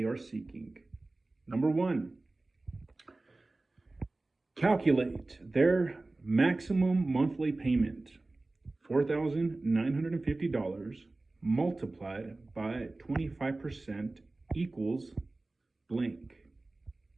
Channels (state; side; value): quieter; left; 3.1 dB